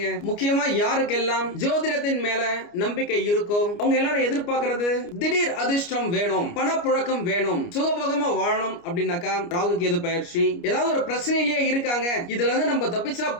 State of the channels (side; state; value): right; late; 29 ms